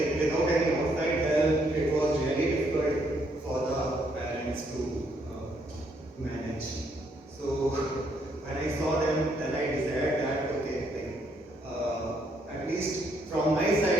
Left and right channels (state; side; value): normal; both; correlation 0.72